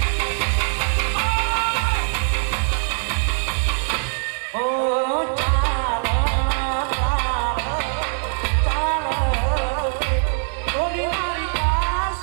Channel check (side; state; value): left; silent; 64 dB below the other